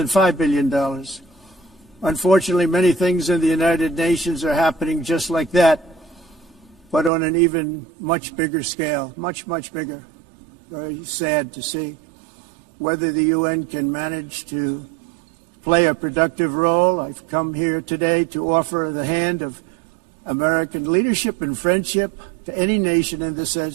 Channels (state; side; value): drops out; left; at 7.1 s